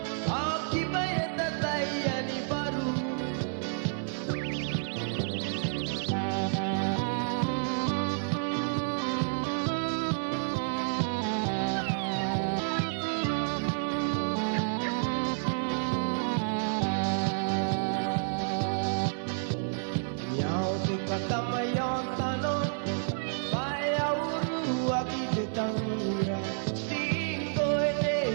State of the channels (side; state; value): left; silent; 56 dB below the other